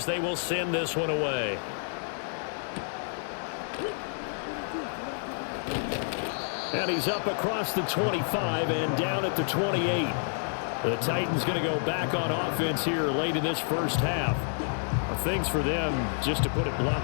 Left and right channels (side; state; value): right; silent; digital silence